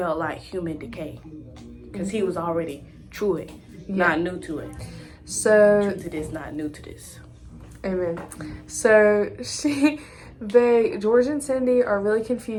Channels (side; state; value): both; identical; correlation 1.00